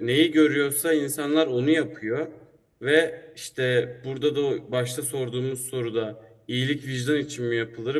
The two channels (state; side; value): identical; both; correlation 1.00